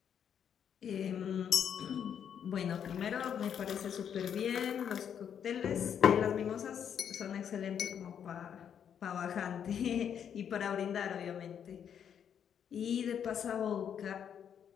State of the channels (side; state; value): right; quieter; 8.4 dB